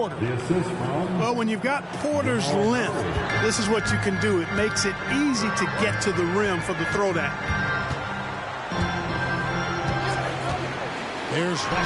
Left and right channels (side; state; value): both; identical; correlation 1.00